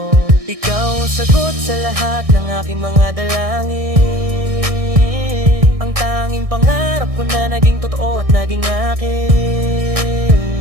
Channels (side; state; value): left; late; 1.6 ms